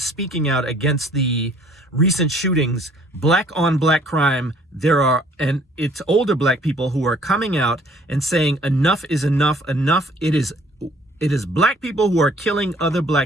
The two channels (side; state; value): both; normal; correlation 0.58